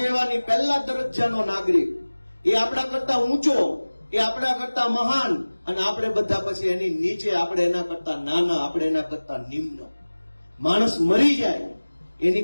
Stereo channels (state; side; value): inverted; both; correlation -1.00